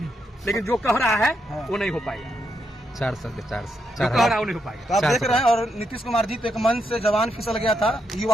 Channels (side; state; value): both; normal; correlation 0.81